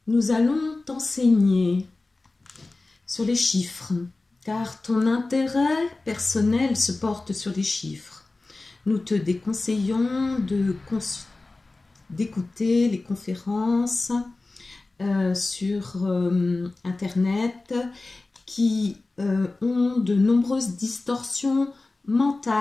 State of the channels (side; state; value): right; quieter; 3.3 dB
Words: Nous allons t'enseigner sur les chiffres, car ton intérêt personnel se porte sur les chiffres. Nous te déconseillons d'écouter les conférences sur Internet qui ont de nombreuses distorsions